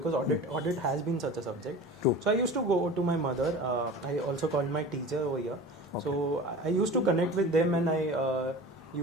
audit has been such a subject. True. So I used to go to my mother. I also called my teacher over here. Okay. So I used to connect with them, and I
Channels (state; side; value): normal; both; correlation 0.36